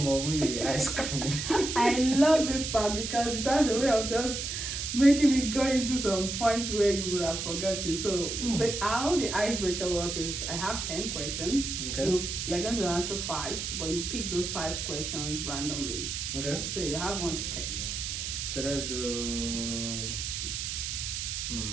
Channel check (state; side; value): noise; right; hiss, 4 dB below the sound